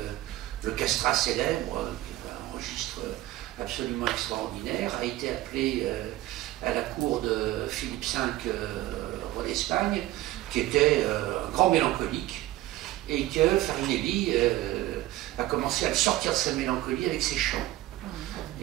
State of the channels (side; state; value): left; quieter; 16.0 dB